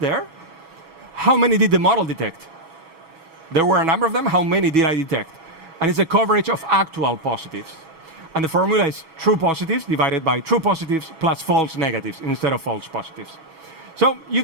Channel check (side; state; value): left; late; 6.2 ms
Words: how many did the model detect? There were a number of them. How many did I detect? And it's a coverage of actual positives. And the formula is true positives divided by true positives plus false negatives instead of false positives. So you